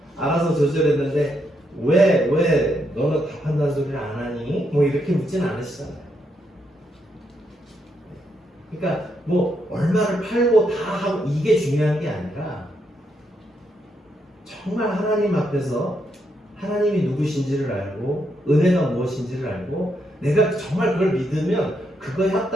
알아서 조절했는데 왜 너는 다 판다는 소리를 안 하니? 뭐 이렇게 묻지는 않으시잖아요. 그러니까 뭐 얼마를 팔고 다 하고 이게 중요한 게 아니라 정말 하나님 앞에서 하나님이 누구신지를 알고 은혜가 무엇인지를 알고 내가 정말 그걸 믿으면 그거에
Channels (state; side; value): normal; both; correlation 0.78